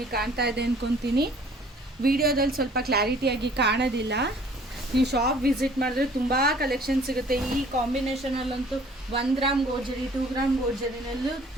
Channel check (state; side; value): normal; both; correlation 0.54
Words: ಕಾಣ್ತಾ ಇದೆ ಅಂದ್ಕೊತೀನಿ. ವಿಡಿಯೋದಲ್ಲಿ ಸ್ವಲ್ಪ ಕ್ಲಾರಿಟಿಯಾಗಿ ಕಾಣೋದಿಲ್ಲ. ನೀವು ಶಾಪ್ ವಿಸಿಟ್ ಮಾಡಿದ್ರೆ ತುಂಬ ಕಲೆಕ್ಷನ್ ಸಿಗುತ್ತೆ. ಈ ಕಾಂಬಿನೇಷನಲ್ಲಂತೂ 1 ಗ್ರಾಮ್ ಗೋಲ್ಡ್, 2 ಗ್ರಾಮ್ ಗೋಲ್ಡ್